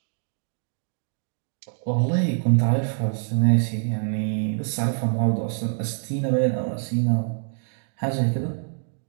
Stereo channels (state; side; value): silent; left; digital silence